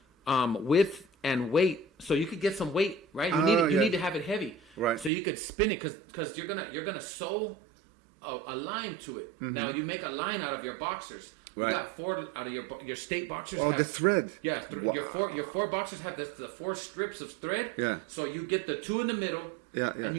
width and weight. So you could get some weight, right? You need to have it heavy. Right. So you could spin it because you're gonna sew a line to it. Mm-hmm. Now you make a line out of your boxers. Right. You got 4 out of your state boxers have the thread. Yeah, your 4 boxers have the 4 strips of thread. Yeah. So you get the 2 in the middle. Yeah. And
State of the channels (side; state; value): left; drops out; at 5.1 s